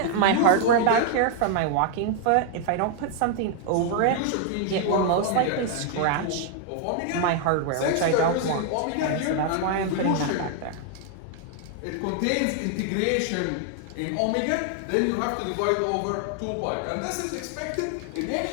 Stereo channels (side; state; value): both; different; correlation 0.00